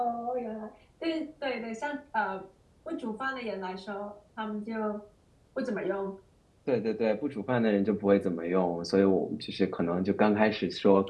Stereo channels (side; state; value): both; identical; correlation 1.00